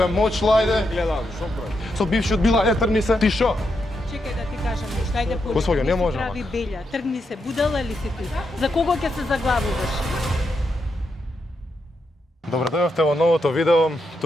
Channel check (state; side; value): normal; both; correlation 0.83